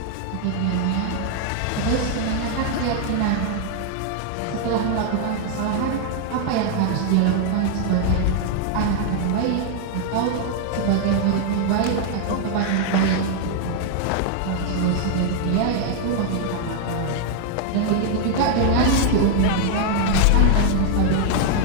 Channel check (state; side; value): different; both; correlation 0.00